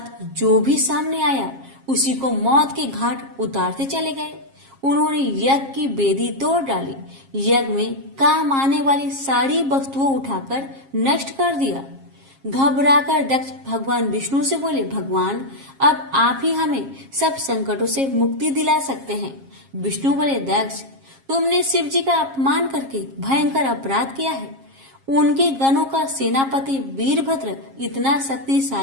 जो भी सामने आया उसी को मौत के घाट उतारते चले गए। उन्होंने यज्ञ की वेदी तोड़ डाली, यज्ञ में काम आने वाली सारी वस्तुओं उठाकर नष्ट कर दिया। घबराकर दक्ष भगवान विष्णु से बोले, भगवान, अब आप ही हमें सब संकटों से मुक्ति दिला सकते हैं। विष्णु बोले, दक्ष, तुमने शिव जी का अपमान करके भयंकर अपराध किया है। उनके गणों का सेनापति वीरभद्र इतना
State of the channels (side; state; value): left; late; 7.4 ms